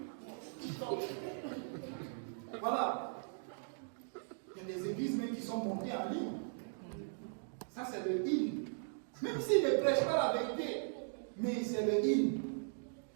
TikTok. Voilà. Il y a des églises même qui sont montées en ligne. Ça, c'est le hymne. Même s'ils ne prêchent pas la vérité, mais c'est le hymne.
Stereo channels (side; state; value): left; silent; digital silence